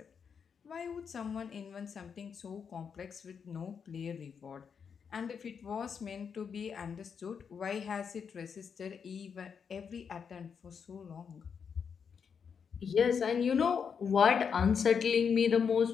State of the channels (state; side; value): quieter; right; 6.6 dB